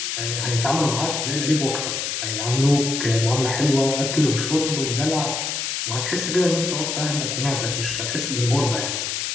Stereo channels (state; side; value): noise; left; hiss, 2 dB below the sound